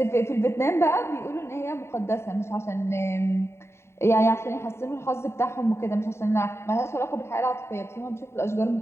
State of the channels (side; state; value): right; late; 0.13 ms